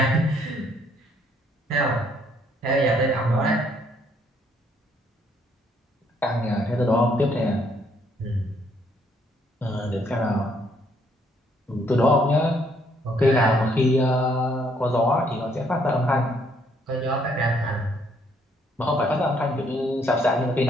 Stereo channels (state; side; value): normal; both; correlation 0.68